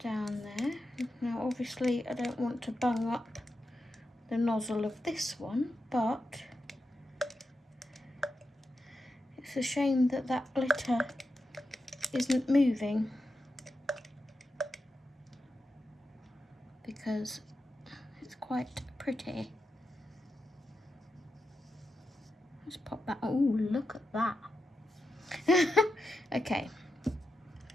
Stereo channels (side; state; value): both; normal; correlation 0.88